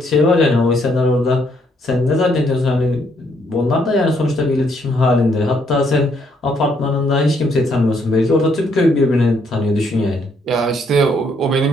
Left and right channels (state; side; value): normal; both; correlation 0.71